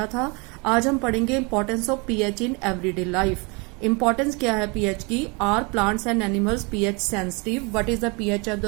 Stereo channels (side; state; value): left; quieter; 29.8 dB